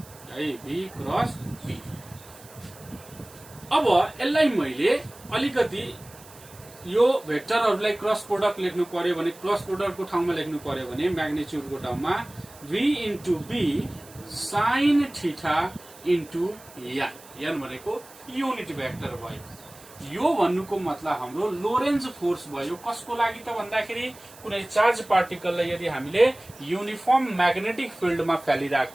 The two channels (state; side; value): noise; right; hiss, 21 dB below the sound